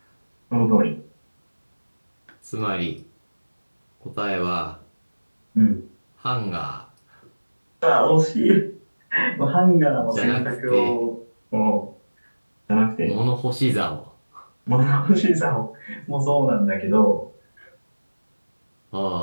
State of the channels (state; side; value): inverted; both; correlation -1.00